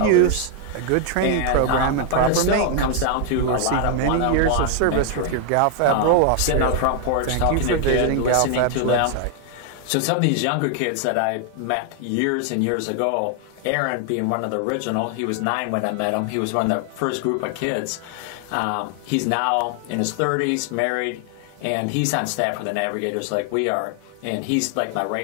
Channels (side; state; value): both; different; correlation 0.00